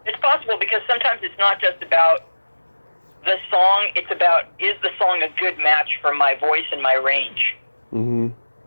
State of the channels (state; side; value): inverted; both; correlation -1.00